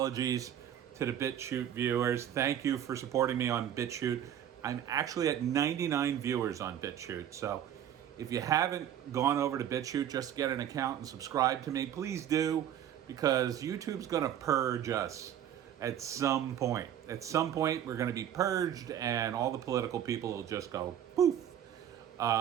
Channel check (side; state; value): left; quieter; 10.3 dB